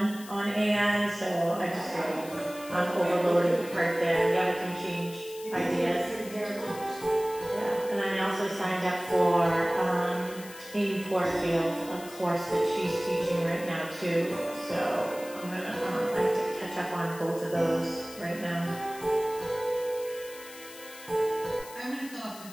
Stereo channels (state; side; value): noise; left; hiss, 16 dB below the sound